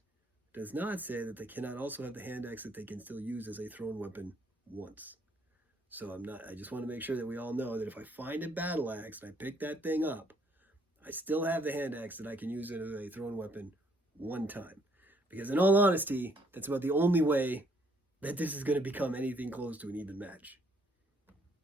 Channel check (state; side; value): normal; both; correlation 0.67